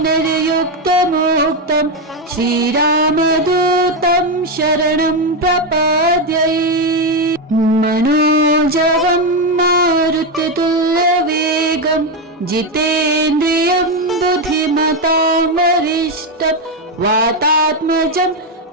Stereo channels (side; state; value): both; normal; correlation 0.08